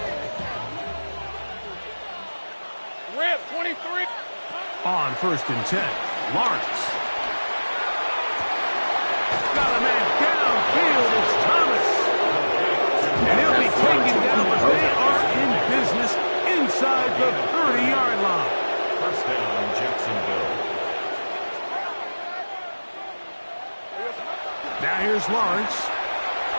Rip, 23. On 1st and 10, Lawrence. Got a man downfield. It's Thomas. And he'll be taken down, but they are in inside the 30-yard line. First down, Jacksonville. Now here's Lawrence.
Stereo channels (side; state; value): both; inverted; correlation -1.00